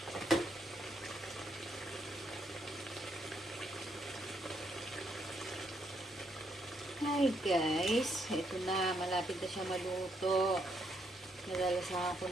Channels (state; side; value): normal; both; correlation 0.75